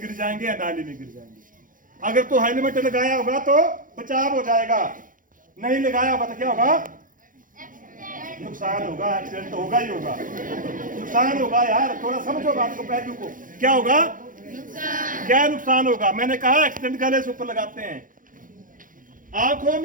जाएंगे या नाली में गिर जाएंगे। अगर तो हेलमेट लगाया होगा तो बचाव हो जाएगा, नहीं लगाया होगा तो क्या होगा, नुकसान होगा, एक्सीडेंट होगा ही होगा, नुकसान होगा। यार थोड़ा समझो बात को, पहलू को, क्या होगा, क्या नुकसान होगा। मैंने कहा एक्सीडेंट गले से ऊपर लगाते हैं, आंखों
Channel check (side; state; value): left; late; 0.39 ms